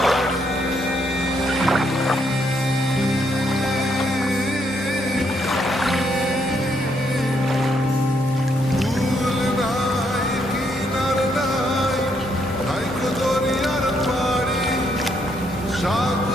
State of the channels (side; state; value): both; normal; correlation 0.74